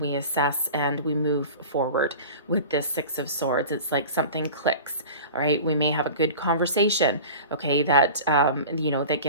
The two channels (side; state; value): both; inverted; correlation -0.36